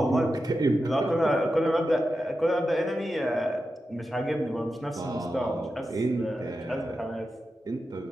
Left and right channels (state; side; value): normal; both; correlation 0.90